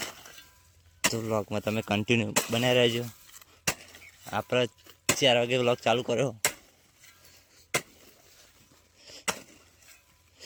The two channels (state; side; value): identical; both; correlation 1.00